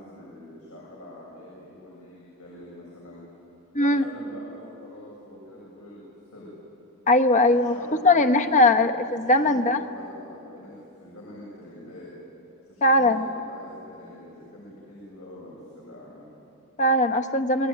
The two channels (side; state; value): both; normal; correlation 0.07